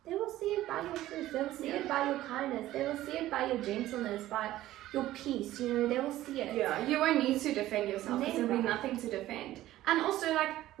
They will see it by your fruits. They will see it by your kindness. They will see it by your gentleness, by your peace. They will see it. Yeah, you won't need to defend yourself, because there'll be nothing to defend. And also, like,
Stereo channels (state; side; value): quieter; left; 14.8 dB